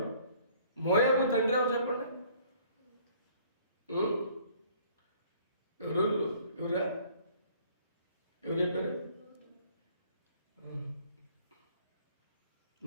మోయాబు తండ్రి ఎవరు చెప్పండి? ఎవరా? ఎవరు చెప్పారు?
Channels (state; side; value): inverted; both; correlation -0.57